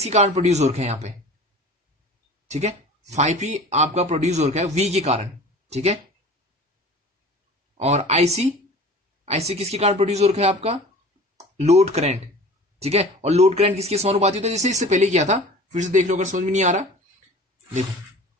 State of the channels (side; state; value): both; normal; correlation 0.40